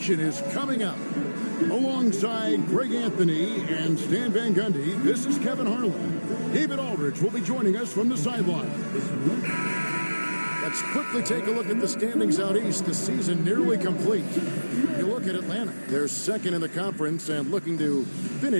is coming up. Alongside Greg Anthony and Stan Van Gundy, this is Kevin Harlan. David Aldridge will be joining us from the sideline. Let's quickly take a look at the standings out east. The season nearly complete. You look at Atlanta. They're second in the conference and looking to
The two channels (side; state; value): both; inverted; correlation -1.00